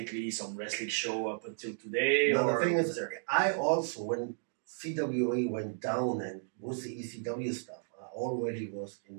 some wrestling show up until today? No, the thing is, I also, when CWA went down and with the ECW stuff, I already was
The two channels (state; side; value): silent; left; digital silence